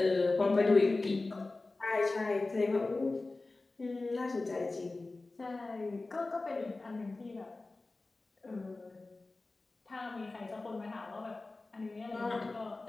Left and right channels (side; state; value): right; quieter; 3.3 dB